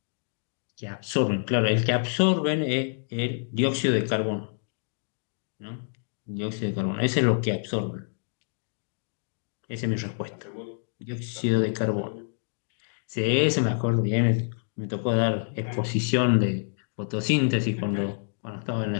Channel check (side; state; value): right; silent; digital silence